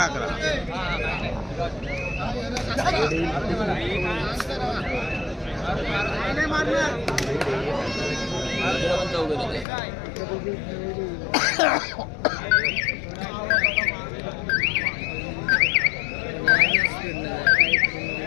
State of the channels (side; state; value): right; drops out; at 9.7 s